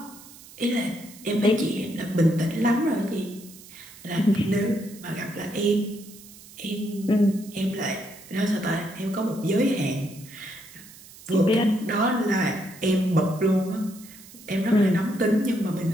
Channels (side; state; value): right; noise; hiss, 20 dB below the sound